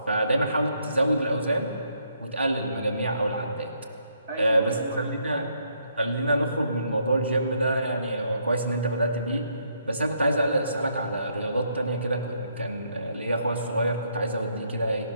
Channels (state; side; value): inverted; both; correlation -0.72